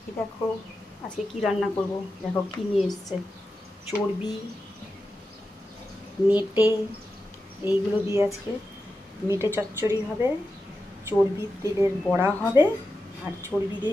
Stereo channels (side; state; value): both; normal; correlation 0.90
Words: এই দেখো আজকে কি রান্না করব। দেখো কি নিয়ে এসছে, চর্বি, মেটে, এইগুলো দিয়ে আজকে মেটে চচ্চড়ি হবে, চর্বির তেলের বড়া হবে, আর চর্বি